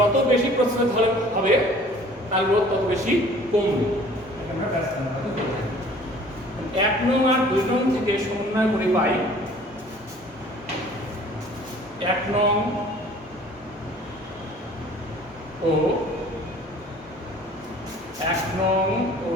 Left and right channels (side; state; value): both; normal; correlation 0.51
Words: বেশি প্রস্থচ্ছেদ হবে তার রোধ তত বেশি কমবে। আমরা ব্যস্তানুপাতিক বলে থাকি। 1 নং আর 2 নং থেকে সমন্বয় করে পাই 1 নং ও 1 নং ও